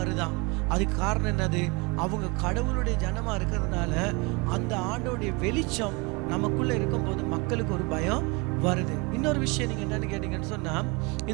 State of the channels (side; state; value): left; quieter; 27.3 dB